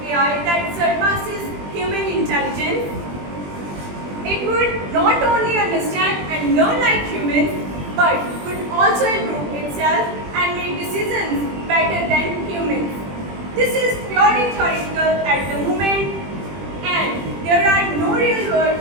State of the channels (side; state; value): left; late; 20 ms